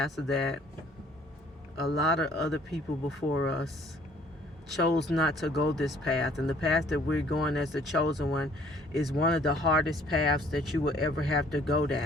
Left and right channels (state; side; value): normal; both; correlation 0.58